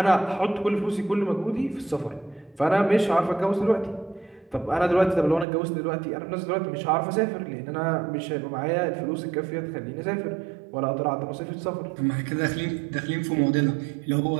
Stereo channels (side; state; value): left; drops out; at 5.5 s